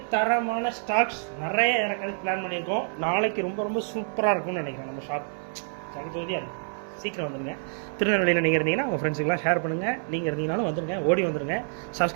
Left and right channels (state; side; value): silent; left; 60 dB below the other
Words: தரமான ஸ்டாக்ஸ் நிறைய இறக்கிறதுக்கு பிளான் பண்ணியிருக்கோம். நாளைக்கு ரொம்ப ரொம்ப சூப்பராக இருக்கும்னு நினைக்கிறேன் நம்ம ஷாப். ஜகஜோதியாக இருக்கும். சீக்கிரம் வந்துடுங்க. திருநெல்வேலியில் நீங்கள் இருந்தீங்கன்னா உங்கள் ஃப்ரெண்ட்ஸுக்கெலாம் ஷேர் பண்ணுங்கள். நீங்கள் இருந்தீங்கனாலும் வந்துடுங்க, ஓடி வந்துடுங்க.